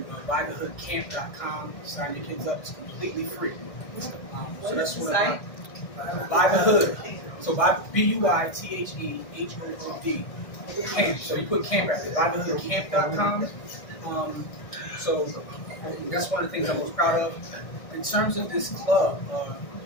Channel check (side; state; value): right; late; 1.6 ms